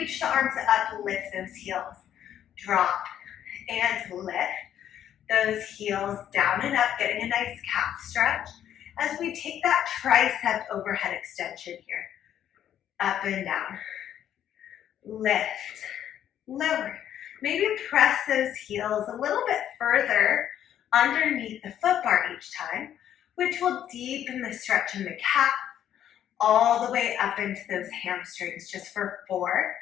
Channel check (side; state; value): right; quieter; 10.5 dB